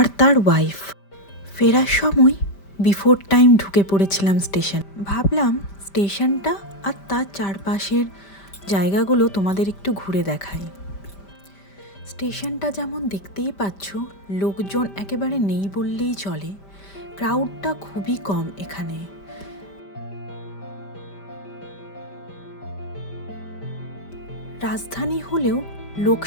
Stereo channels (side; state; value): right; late; 5.1 ms